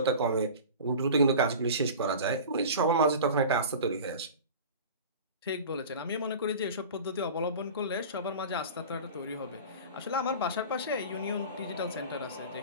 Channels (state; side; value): inverted; both; correlation -0.35